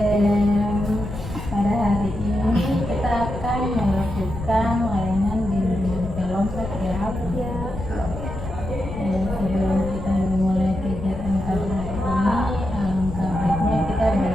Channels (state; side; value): noise; left; rumble, 8 dB below the sound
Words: Pada hari ini kita akan melakukan layanan bimbingan kelompok ya. Sebelum kita memulai kegiatan pada hari ini, alangkah baiknya kita